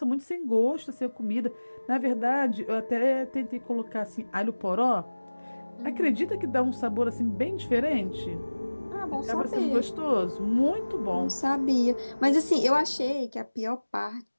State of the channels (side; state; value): both; inverted; correlation -1.00